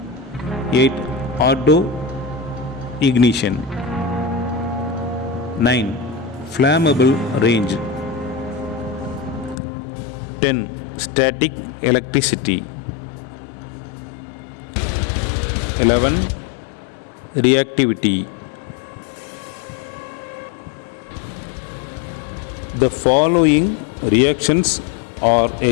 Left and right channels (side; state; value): right; drops out; at 9.6 s